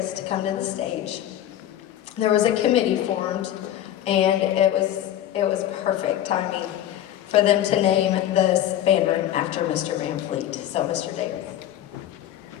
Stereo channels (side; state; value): right; quieter; 11.9 dB